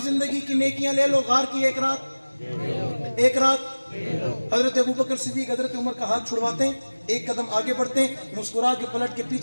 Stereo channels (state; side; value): inverted; both; correlation -1.00